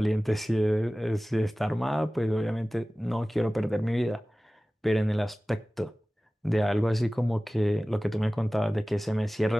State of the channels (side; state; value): both; normal; correlation 0.97